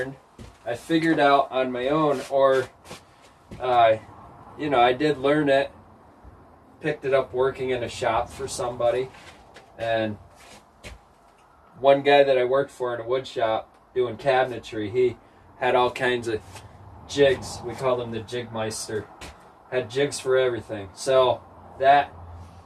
I figured out on my own, or you know, I did learn it, picked it up working in a shop for somebody. And one guy that I worked for in a wood shop doing cabinetry, he had all kinds of jigs. We called him the Jigmeister. Had jigs for everything. So that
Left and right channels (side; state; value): both; identical; correlation 1.00